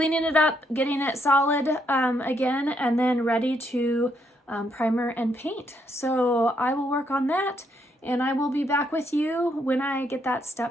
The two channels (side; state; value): both; normal; correlation 0.74